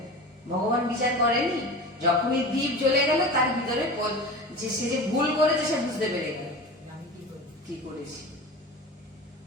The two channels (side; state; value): both; normal; correlation 0.32